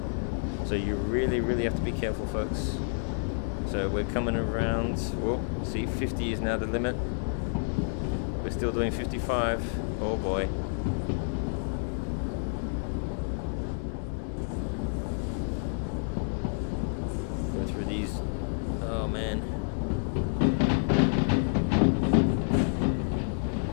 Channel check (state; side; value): silent; right; digital silence